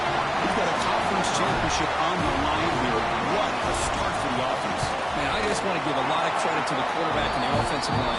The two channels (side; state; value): both; identical; correlation 1.00